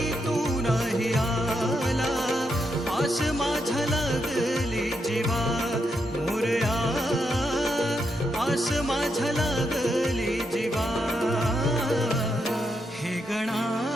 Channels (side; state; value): both; normal; correlation 0.82